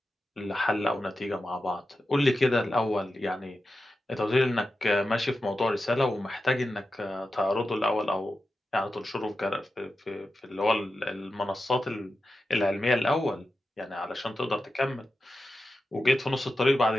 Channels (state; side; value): normal; both; correlation 0.91